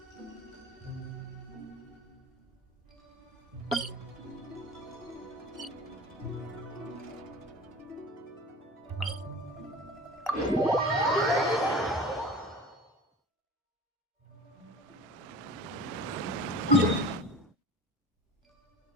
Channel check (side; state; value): both; normal; correlation 0.37